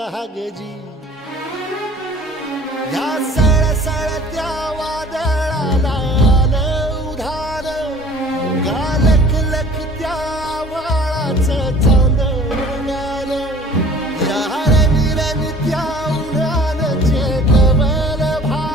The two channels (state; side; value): normal; both; correlation 0.49